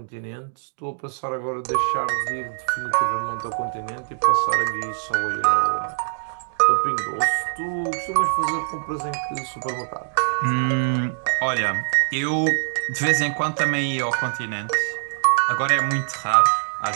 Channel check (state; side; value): silent; left; digital silence